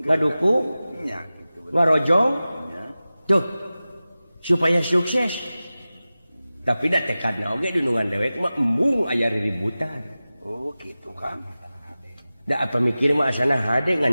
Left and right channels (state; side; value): inverted; both; correlation -0.96